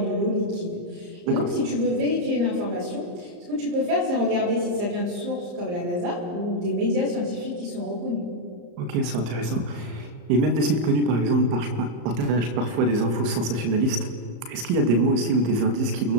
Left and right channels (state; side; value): late; left; 34 ms